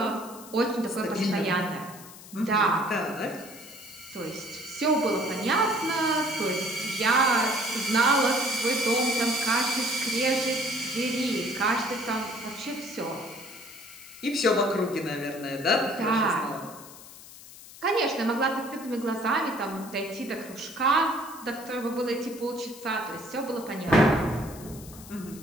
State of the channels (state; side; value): noise; left; hiss, 17 dB below the sound